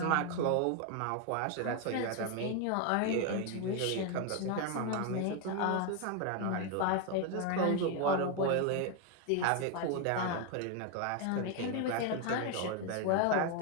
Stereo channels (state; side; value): different; both; correlation 0.01